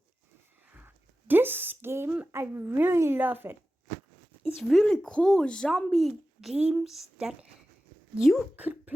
This game, I really love it. It's really cool zombie games that you could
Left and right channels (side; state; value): both; normal; correlation 0.94